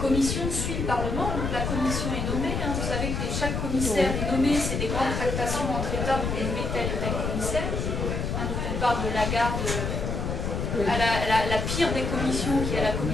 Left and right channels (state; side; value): noise; left; rumble, 2 dB below the sound